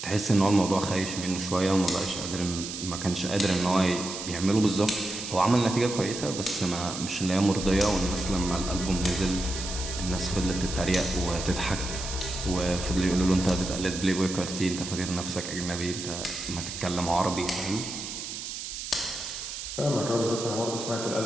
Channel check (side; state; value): right; noise; hiss, 7 dB below the sound